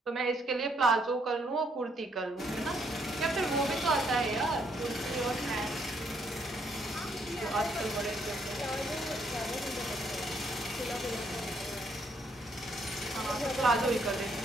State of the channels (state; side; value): normal; both; correlation 0.71